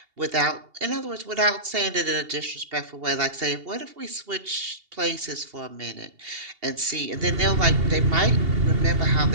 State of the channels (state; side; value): late; left; 2.8 ms